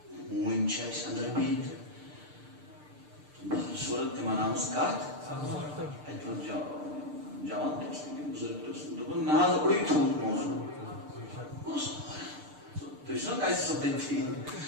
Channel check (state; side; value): late; left; 6.7 ms